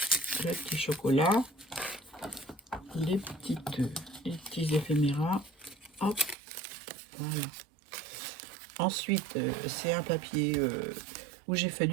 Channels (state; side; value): drops out; left; at 6.4 s